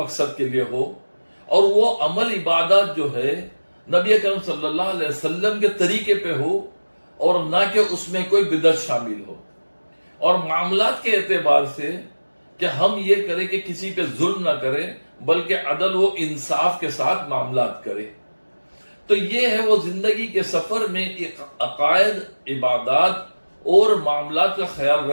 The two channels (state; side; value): inverted; both; correlation -1.00